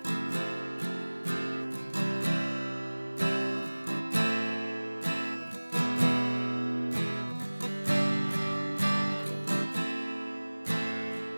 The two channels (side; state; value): both; inverted; correlation -1.00